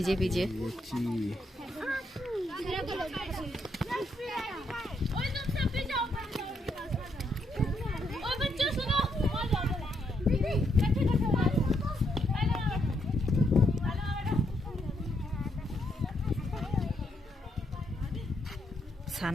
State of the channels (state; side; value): normal; both; correlation 0.77